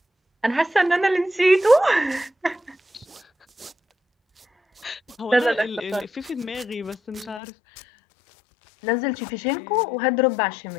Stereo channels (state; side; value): drops out; right; at 7.4 s